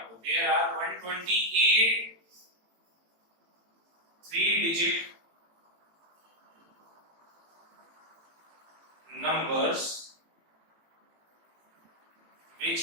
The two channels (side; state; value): left; late; 18 ms